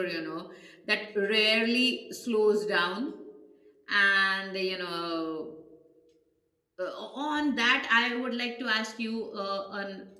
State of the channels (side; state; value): both; identical; correlation 1.00